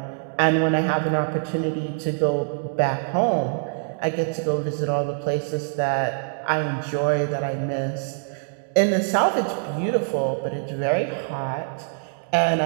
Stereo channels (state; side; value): silent; left; digital silence